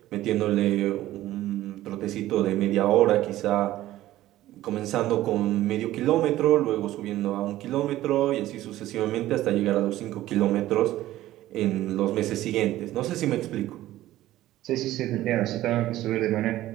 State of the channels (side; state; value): left; quieter; 15.0 dB